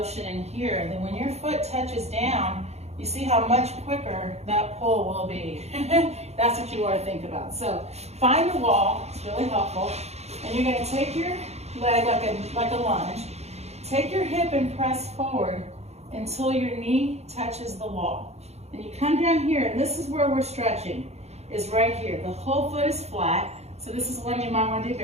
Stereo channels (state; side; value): late; left; 0.31 ms